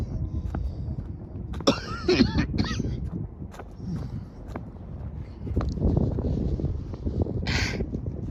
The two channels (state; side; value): identical; both; correlation 1.00